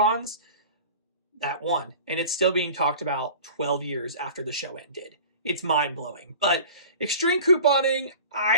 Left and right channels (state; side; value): inverted; both; correlation -0.40